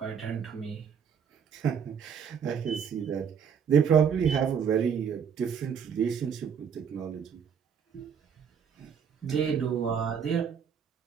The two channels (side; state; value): left; quieter; 7.4 dB